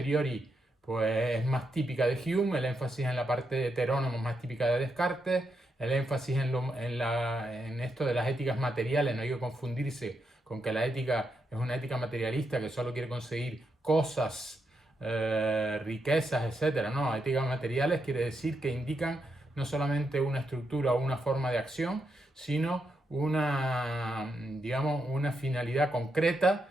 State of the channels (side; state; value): both; normal; correlation 0.82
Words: pues es más típica de Hume, el énfasis en la parte heterónoma es más típica de Descartes, el énfasis en esto de las éticas materiales, no hay que confundirse con que la ética es una ética materialista que solo quiere conseguir cosas, riquezas, etc. No, éticas materiales quiere decir que indican no solamente una estructura o una forma de acción, sino digamos, una finalidad concreta